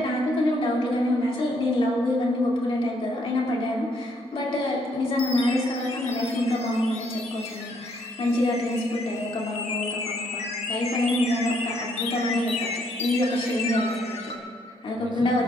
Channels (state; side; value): normal; both; correlation 0.70